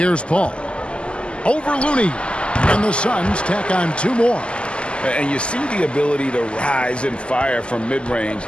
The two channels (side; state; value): right; late; 0.052 ms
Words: Paul. Over Looney. And the Suns tack on two more. And you see the ability to rise and fire from mid-range,